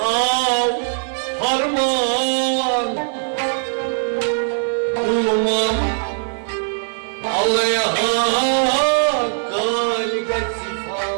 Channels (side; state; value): left; silent; 57 dB below the other